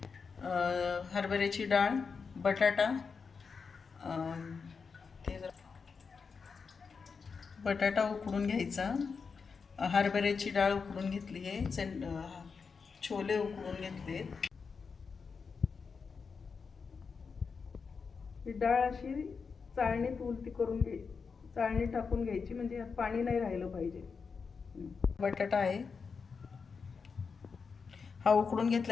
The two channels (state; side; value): quieter; right; 5.4 dB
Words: हरभऱ्याची डाळ, बटाटा, ते बटाटा उकडून घ्यायचा, हरभऱ्याची डाळ उकडून घेतली आहे, छोले उकडून घेतले. ही डाळ अशी चाळणीत उलटी करून चाळणी टाकून घ्यायची, म्हणजे पाणी नाही राहिलं पाहिजे. बटाटा आहे, हा उकडून